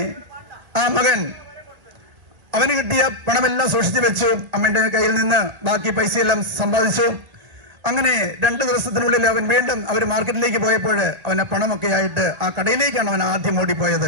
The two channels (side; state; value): left; late; 1.9 ms